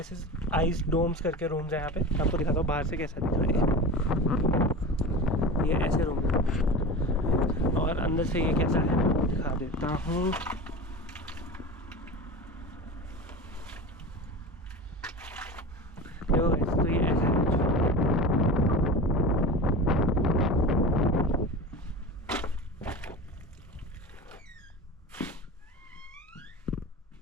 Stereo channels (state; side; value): normal; both; correlation 0.30